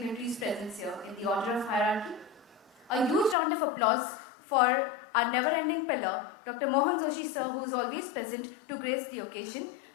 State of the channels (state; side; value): drops out; right; at 3.4 s